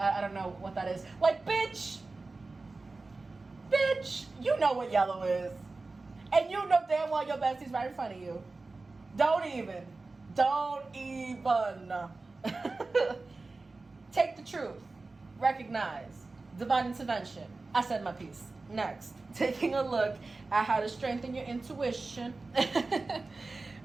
don't know what that is. Like, bitch, you know what yellow is. And you know damn well your bestie's right in front of you. Don't even. Take the truth. Recognize. Divine intervention. I said my piece. Next, taking a look at how to strengthen your intuition.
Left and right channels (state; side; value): quieter; left; 3.5 dB